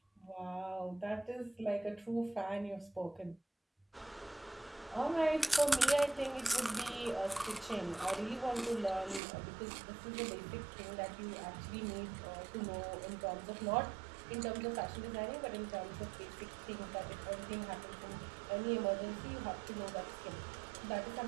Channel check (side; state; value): left; drops out; at 9.2 s